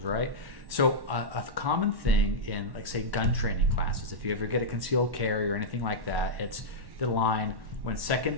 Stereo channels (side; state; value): left; late; 1.1 ms